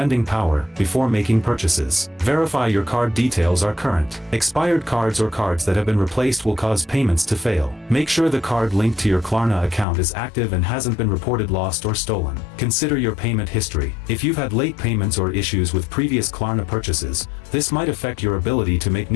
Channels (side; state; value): right; drops out; at 9.9 s